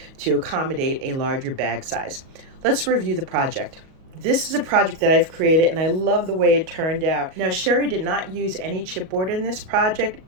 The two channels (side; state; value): left; late; 37 ms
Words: to accommodate a larger bag size. Let's review the project. This is a project that I've created, and I love the way it turned out. Now, Sherry did not use any chipboard in this project.